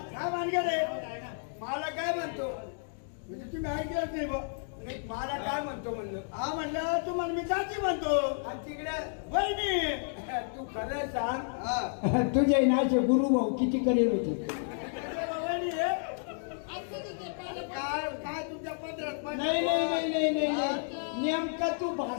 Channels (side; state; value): right; silent; digital silence